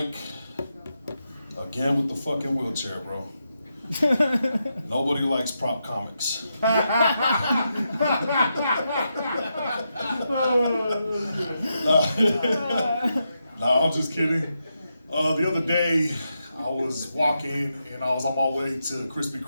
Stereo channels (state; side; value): inverted; both; correlation -0.85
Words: again with the fucking wheelchair, bro. Nobody likes prop comics. No, I'm just kidding. The other day, I was walking and I was on my way to Krispy